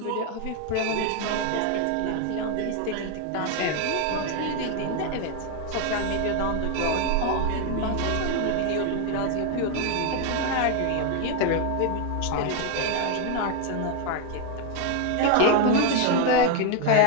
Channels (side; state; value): both; different; correlation 0.01